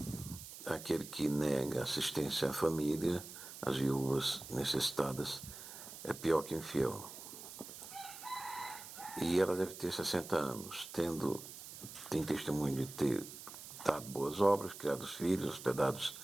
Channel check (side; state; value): right; noise; hiss, 13 dB below the sound